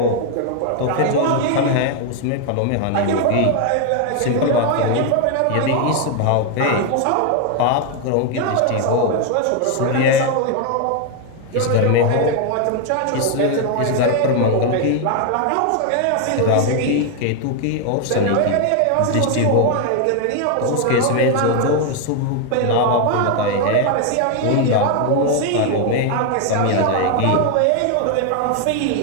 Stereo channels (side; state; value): both; different; correlation 0.01